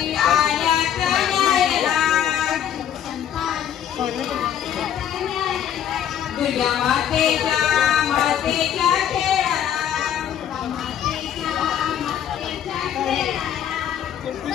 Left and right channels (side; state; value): right; quieter; 9.7 dB